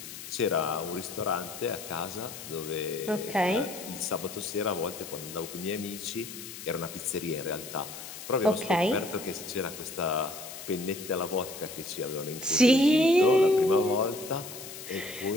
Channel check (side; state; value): left; noise; hiss, 12 dB below the sound